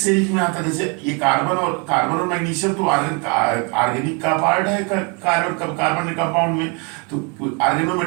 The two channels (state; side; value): quieter; left; 33.0 dB